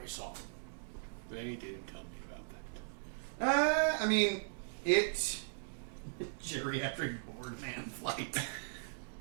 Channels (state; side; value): silent; left; digital silence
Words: saw. They did tell me about that. I mean, it's geriatric board man flight.